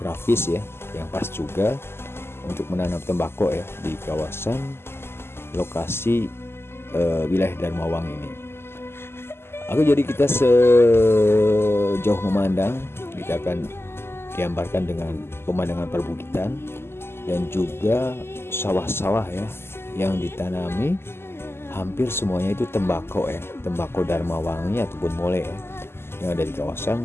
ya yang pas juga untuk menanam tembakau ya di kawasan lokasi wilayah Dharmawangi ini. Jadi kita sejauh memandang, kita akan digambarkan dengan pemandangan perbukitan dan juga sawah-sawah ya yang ditanami, hampir semuanya itu tembakau ya, tembakau Dharmawangi ataupun Molai ya, yang ada di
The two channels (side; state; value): right; late; 0.12 ms